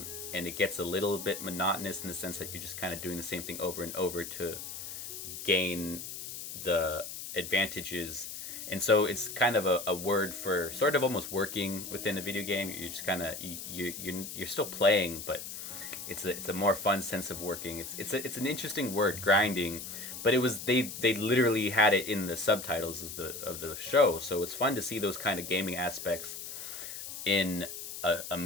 and it gets a little bit monotonous in the sense that you're just kind of doing the same thing over and over to gain the advantages. And so it's kind of a word for sort of almost working within a video game. You're just kind of you're still playing, but it's a more fun sense of working. It's an interesting word, grinding, but it was they literally had it in the subtitles of the show, so it's fun to see those kind of gaming aspects in a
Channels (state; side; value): noise; left; hiss, 8 dB below the sound